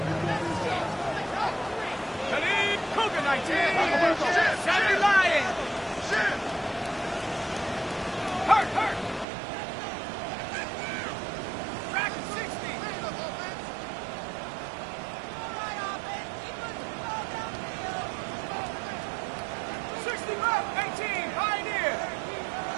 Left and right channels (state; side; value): drops out; left; at 9.2 s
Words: Cougar 19. Sammy Lion. Hurt. Rack 60.